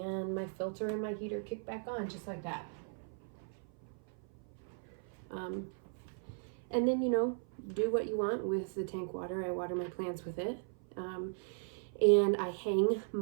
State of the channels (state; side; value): silent; left; 53 dB below the other